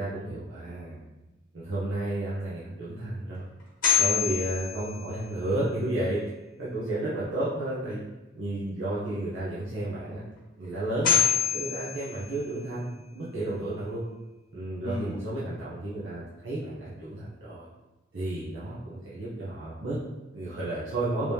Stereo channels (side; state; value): both; normal; correlation 0.48